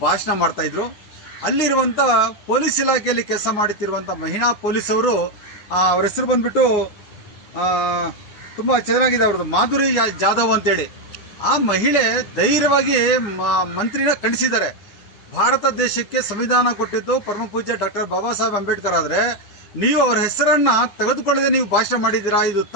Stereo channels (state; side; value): late; right; 9.8 ms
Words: ಭಾಷಣ ಮಾಡ್ತಾಯಿದ್ರು. ಅಲ್ಲಿರುವಂಥ ಪೊಲೀಸ್ ಇಲಾಖೆಯಲ್ಲಿ ಕೆಲಸ ಮಾಡುತ್ತಿರುವಂಥ ಮಹಿಳಾ ಪೊಲೀಸವರು, ಅವ್ರ ಹೆಸರು ಬಂದ್ಬಿಟ್ಟು ತುಂಬ ಚೆನ್ನಾಗಿದೆ ಅವ್ರದ್ದು, ಮಾಧುರಿ ಜಾಧವ್ ಅಂತೇಳಿ. ಆ ಮಹಿಳೆ ಧೈರ್ಯವಾಗಿ ಮಂತ್ರಿನ ಖಂಡಿಸಿದ್ದಾರೆ. ಭಾರತ ದೇಶಕ್ಕೆ ಸಂವಿಧಾನ ಕೊಟ್ಟಿದ್ದು ಪರಮ ಪೂಜ್ಯ ಡಾಕ್ಟರ್ ಬಾಬಾ ಸಾಹೇಬ್ ಅಂಬೇಡ್ಕರ್ ಆದರೆ ನೀವು ಅವರ ಹೆಸರನ್ನ ತೆಗೆದುಕೊಳ್ಳದೆ ನೀವು ಭಾಷಣ ಮಾಡಿದ್ದೀರಾ, ಇದು